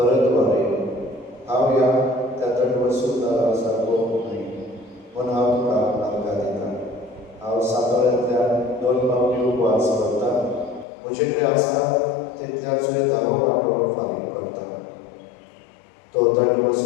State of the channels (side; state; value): right; drops out; at 10.9 s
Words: हांव ह्या त्या दंडवसूलदारा सारको न्ही पूण हांव तुका आर्गां दिता हांव सातोळ्यांतल्यान 2 पावटी उपवास करता म्हजे कडेन आसा तितल्याचोय 10 वांटो फारीक करता तो